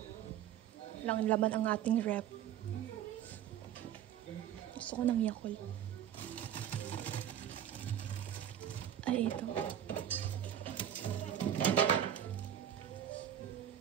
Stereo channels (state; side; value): quieter; left; 10.3 dB